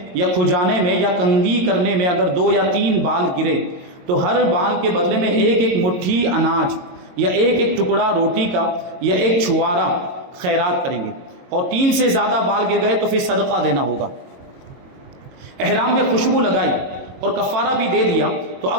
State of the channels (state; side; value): late; left; 22 ms